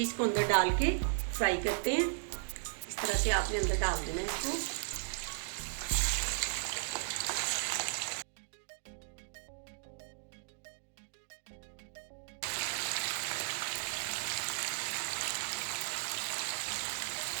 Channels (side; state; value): left; silent; digital silence